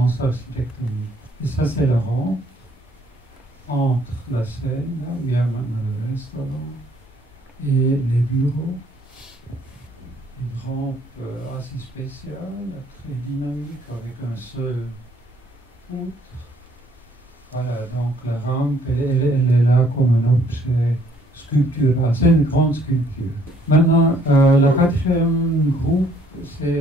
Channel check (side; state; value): both; normal; correlation 0.64